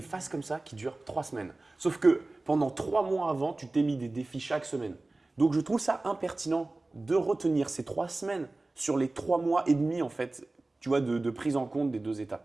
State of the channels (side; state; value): left; quieter; 3.0 dB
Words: phases comme ça qui durent 3 semaines. Sauf que pendant 3 mois avant, tu t'es mis des défis chaque semaine. Donc je trouve ça impertinent de retenir ces 3 semaines sur les 3 mois et demi en fait, tu vois, de prise en compte des 2 états.